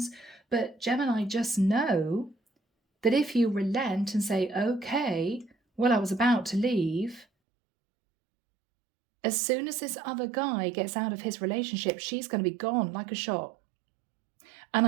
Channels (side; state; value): left; drops out; at 7.2 s